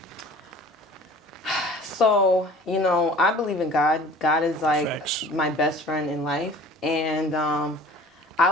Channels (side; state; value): both; normal; correlation 0.45